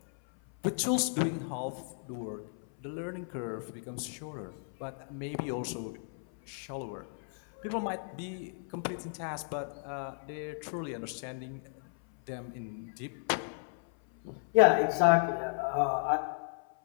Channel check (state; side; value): silent; right; 55 dB below the other